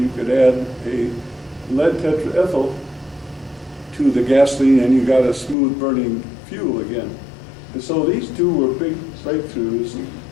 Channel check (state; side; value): drops out; right; at 5.6 s